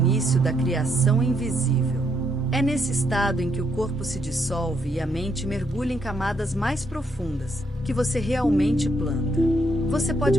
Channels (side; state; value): both; normal; correlation 0.75